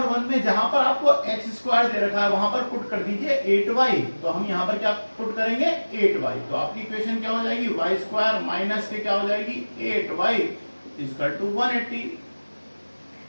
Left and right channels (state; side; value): inverted; both; correlation -1.00